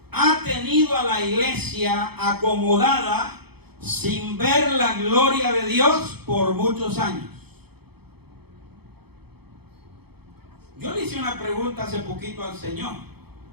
ha tenido a la iglesia acomodada sin ver la gloria de Dios por muchos años. Yo le hice una pregunta hace poquito al Señor,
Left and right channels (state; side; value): late; left; 0.97 ms